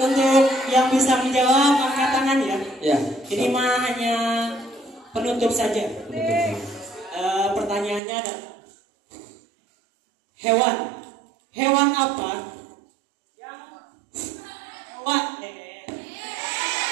yang bisa menjawab angkat tangan ya. Ya. Ini mah hanya penutup saja. Betul. Pertanyaannya ada hewan apa yang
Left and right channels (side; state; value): left; drops out; at 8.0 s